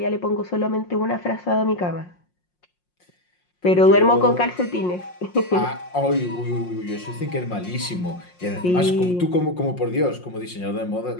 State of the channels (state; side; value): late; right; 5.6 ms